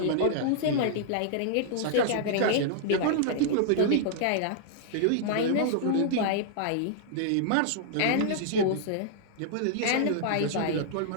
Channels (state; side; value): different; both; correlation -0.01